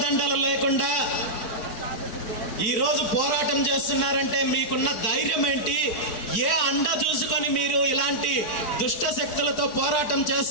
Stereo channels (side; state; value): right; late; 4.6 ms